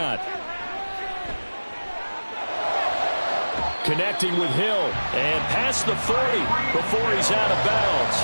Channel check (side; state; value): both; inverted; correlation -1.00